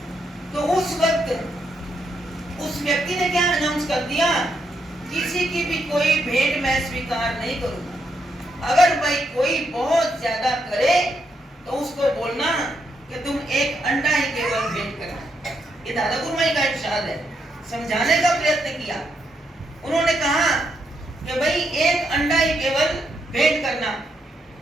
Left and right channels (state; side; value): normal; both; correlation 0.79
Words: तो उस वक्त उस व्यक्ति ने क्या अनाउंस कर दिया किसी की भी कोई भेंट मैं स्वीकार नहीं करूंगा। अगर भाई कोई बहुत ज्यादा करे तो उसको बोलना कि तुम एक अंडा ही केवल भेंट करना। ये दादा गुरुमाई का इरशाद है। समझाने का प्रयत्न किया। उन्होंने कहा कि भाई एक अंडा ही केवल भेंट करना।